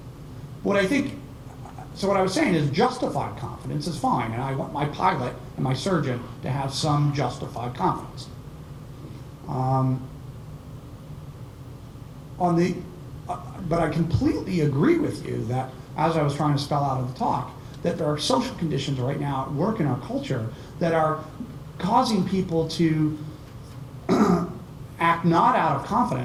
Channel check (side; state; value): both; identical; correlation 1.00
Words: What I think, so what I was saying is justified confidence is fine, and I want my pilot and my surgeon to have some justified confidence. But I completely agree with you that, as I was trying to spell out in the talk, that there are social conditions right now at work in our culture that are causing people to act not out of